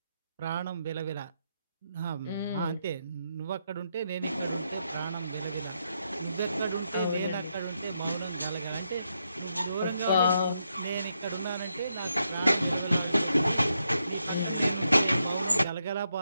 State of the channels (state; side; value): inverted; both; correlation -0.81